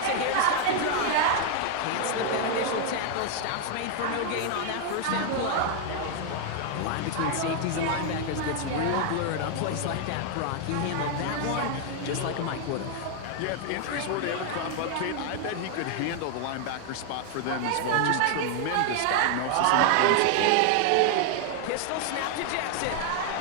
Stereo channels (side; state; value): both; different; correlation 0.00